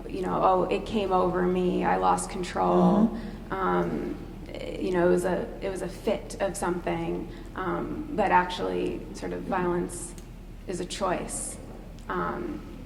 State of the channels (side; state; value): both; identical; correlation 1.00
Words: you know, oh, it came over me, I lost control. You know, it was a fit of something, but actually, sort of violence is a choice.